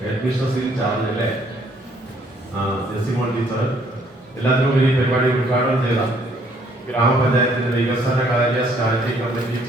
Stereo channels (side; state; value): both; normal; correlation 0.64